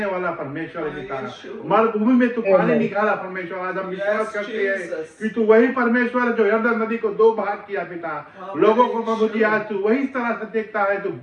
वाला परमेश्वर है पिता। मरुभूमि में तू पानी निकाला परमेश्वर। आज हम विश्वास करते हैं कि तू वही परमेश्वर है जो यरदन नदी को 2 भाग किया पिता। लोगों को प्रभु जी आज तू वही तरह से देखता है, तू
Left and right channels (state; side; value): identical; both; correlation 1.00